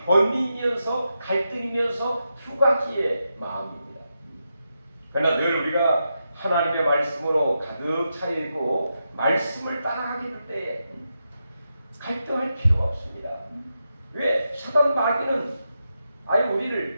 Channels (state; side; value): inverted; both; correlation -0.86